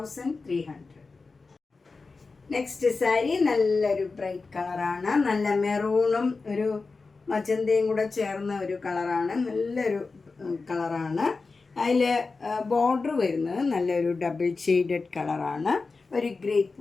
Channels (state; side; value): quieter; right; 4.1 dB